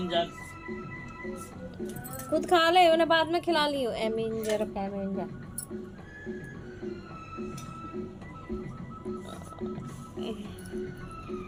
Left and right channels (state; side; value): identical; both; correlation 1.00